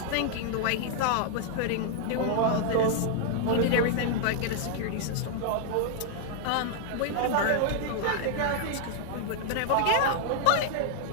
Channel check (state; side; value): different; both; correlation -0.01